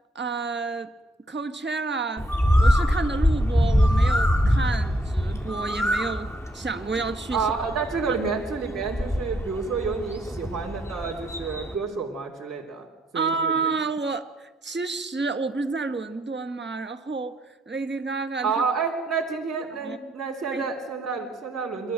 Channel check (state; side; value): normal; both; correlation 0.71